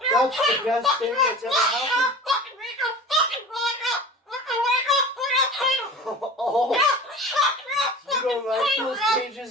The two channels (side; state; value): both; normal; correlation 0.37